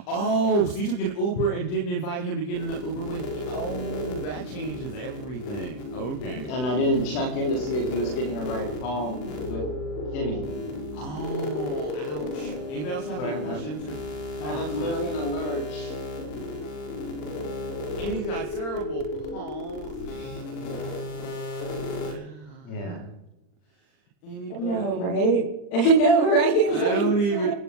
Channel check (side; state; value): right; late; 39 ms